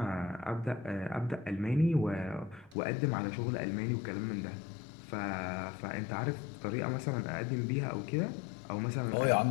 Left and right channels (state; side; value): drops out; right; at 2.8 s